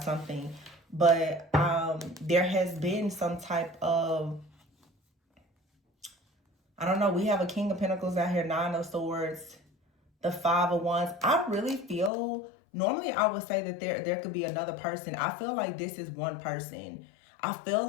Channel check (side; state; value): right; drops out; at 12.1 s